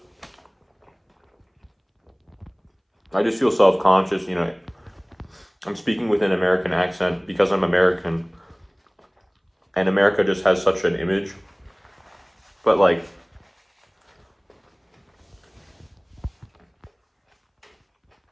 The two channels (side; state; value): both; identical; correlation 1.00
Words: I just feel self-conscious, you know. I'm speaking with an American accent because I'm American, and America just has such an image. But like,